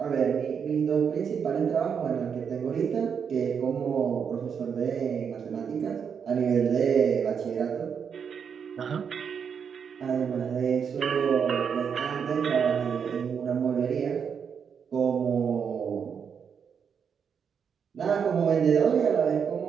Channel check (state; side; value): quieter; left; 7.0 dB